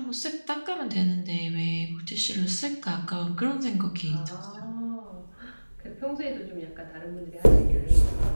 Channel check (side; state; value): both; inverted; correlation -1.00